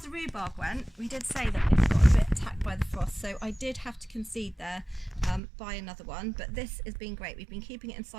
the rhubarb went, we did say that it got a bit attacked by the frost, so I did have to concede there, buy another one, but this has been great. We've been keeping it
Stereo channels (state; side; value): drops out; left; at 5.4 s